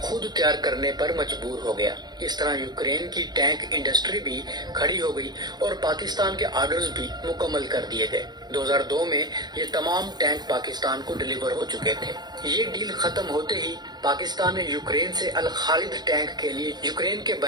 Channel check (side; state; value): left; late; 0.20 ms